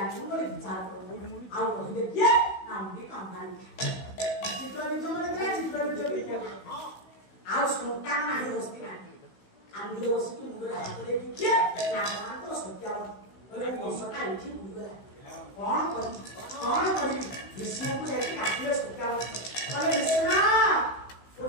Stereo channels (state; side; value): late; right; 16 ms